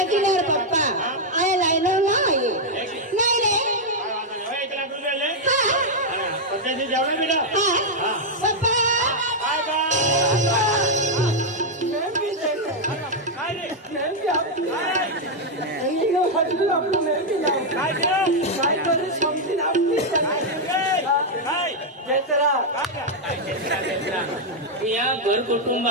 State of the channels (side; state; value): both; normal; correlation -0.01